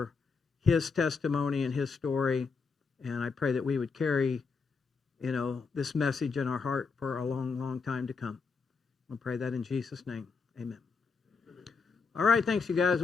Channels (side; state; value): right; quieter; 4.9 dB